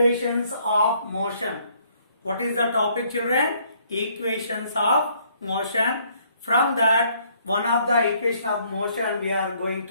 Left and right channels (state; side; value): inverted; both; correlation -0.65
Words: of motion. What is the topic children? Equations of motion. From that one of the equation of motion we are going